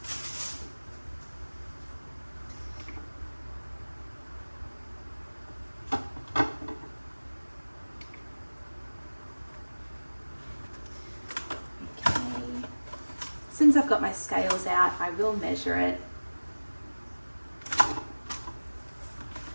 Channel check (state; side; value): inverted; both; correlation -1.00